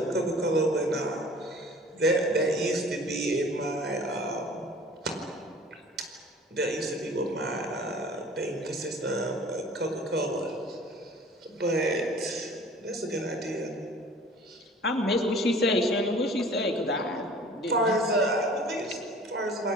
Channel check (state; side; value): normal; both; correlation 0.47